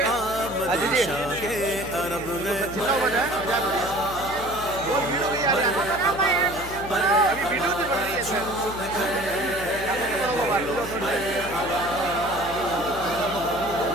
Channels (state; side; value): noise; left; hum, 13 dB below the sound